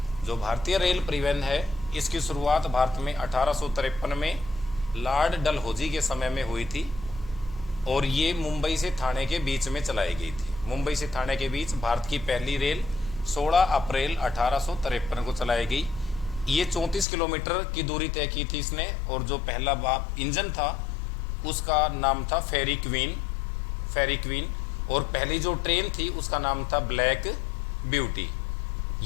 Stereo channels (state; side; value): drops out; right; at 17.1 s